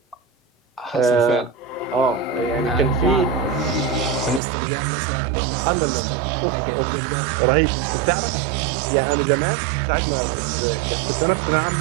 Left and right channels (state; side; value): drops out; left; at 4.4 s